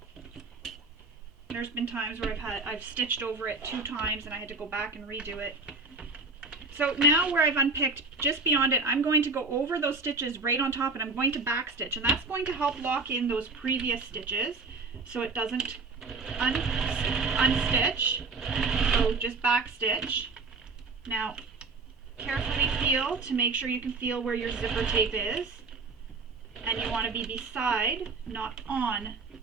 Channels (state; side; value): quieter; left; 3.9 dB